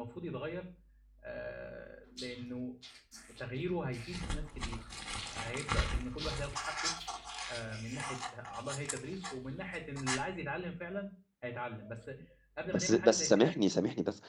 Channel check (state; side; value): identical; both; correlation 1.00